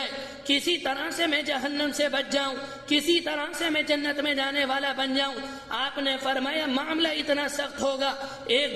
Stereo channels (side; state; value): both; identical; correlation 1.00